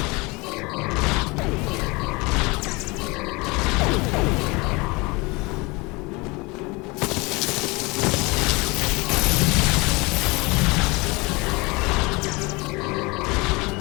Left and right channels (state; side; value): quieter; right; 25.5 dB